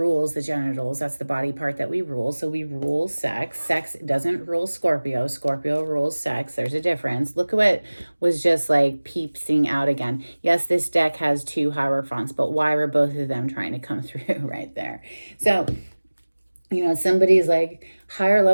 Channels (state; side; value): inverted; both; correlation -1.00